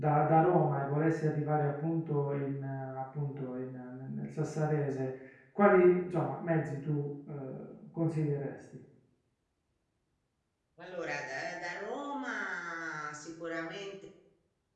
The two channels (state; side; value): identical; both; correlation 1.00